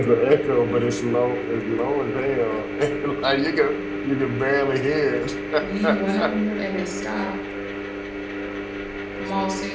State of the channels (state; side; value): identical; both; correlation 1.00